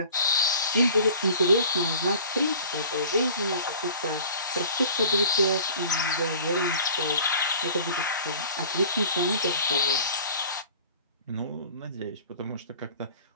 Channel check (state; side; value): inverted; both; correlation -0.45